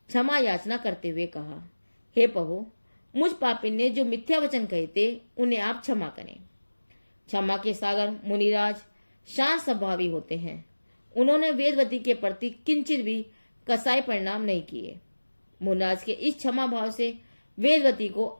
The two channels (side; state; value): both; inverted; correlation -1.00